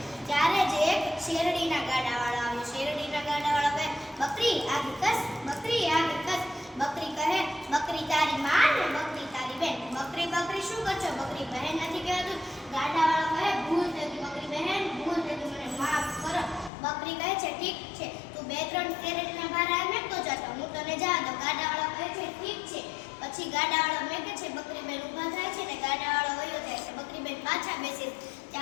ત્યારે જ એક શેરડીના ગાડાવાળો આવ્યો. શેરડીના ગાડાવાળો કહે, બકરી આગે કસ, બકરી આગે કસ. બકરી કહે, બકરી તારી માં ને બકરી તારી બેન. બકરી બકરી શું કરશો? બકરી બહેન નથી કહેવાતું. ગાડાવાળો કહે, ભૂલ થઈ ગઈ બકરી બહેન, ભૂલ થઈ ગઈ, મને માફ કરો. બકરી કહે છે, ઠીક છે, તું બે ત્રણ શેરડીના ભારા મેકતો જતો, હું તને જા દઉં. ગાડાવાળો કહે છે, ઠીક છે. પછી ગાડાવાળો મેકે છે. બકરી બેન ઊભા થાય છે ને ગાડાવાળો વયો જાય છે. બકરી બેન પાછા બેસે.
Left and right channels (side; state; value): right; drops out; at 16.7 s